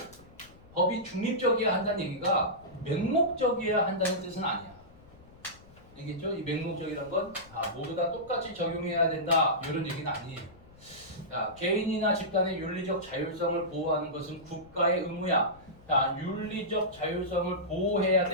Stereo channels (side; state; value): left; noise; rumble, 24 dB below the sound